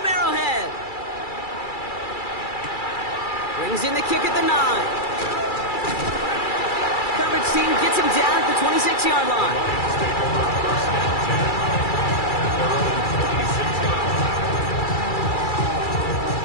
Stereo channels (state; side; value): late; right; 2.3 ms